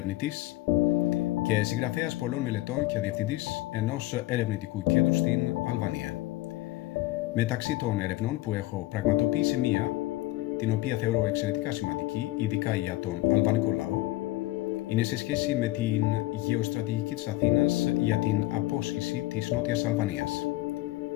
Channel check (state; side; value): quieter; right; 18.0 dB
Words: και συγγραφέας πολλών μελετών και διευθυντής ενός ερευνητικού κέντρου στην Αλβανία. Μεταξύ των ερευνών που έχω πραγματοποιήσει μία, την οποία θεωρώ εξαιρετικά σημαντική, ειδικά για τον αλβανικό λαό, είναι σε σχέση με την γεωστρατηγική της Αθήνας για την απόσχηση της Νότιας Αλβανίας.